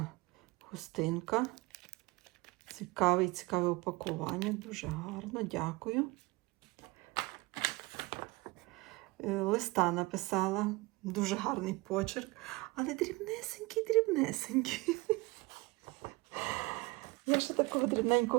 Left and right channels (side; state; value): left; quieter; 23.4 dB